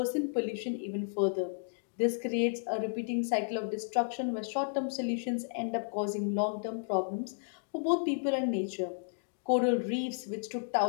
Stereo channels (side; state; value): right; silent; digital silence